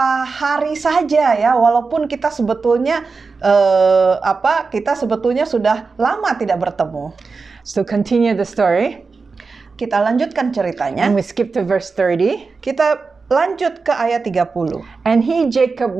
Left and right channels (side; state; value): left; quieter; 4.5 dB